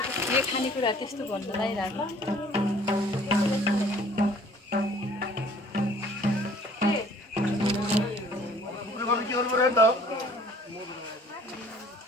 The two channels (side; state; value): both; normal; correlation 0.54